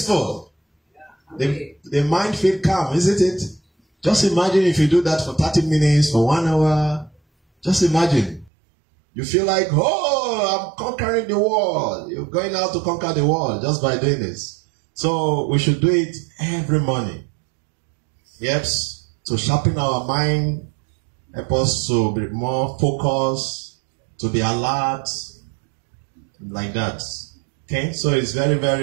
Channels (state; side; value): drops out; left; at 8.5 s